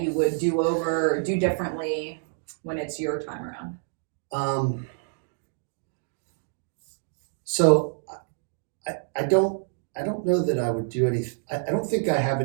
would do over or do differently when it's your time around? So I don't know that I would do anything. I don't think I have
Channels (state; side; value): silent; left; digital silence